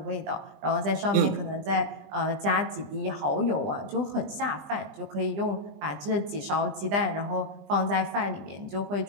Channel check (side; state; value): left; late; 20 ms